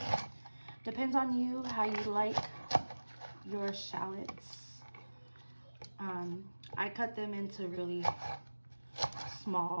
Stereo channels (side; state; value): both; inverted; correlation -1.00